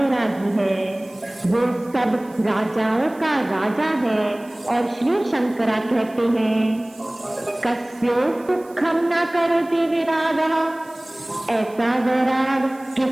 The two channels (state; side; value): noise; right; hiss, 26 dB below the sound